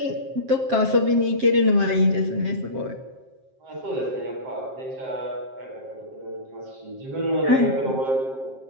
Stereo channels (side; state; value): left; late; 7.6 ms